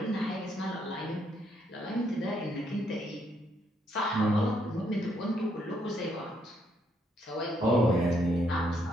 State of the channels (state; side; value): normal; both; correlation 0.73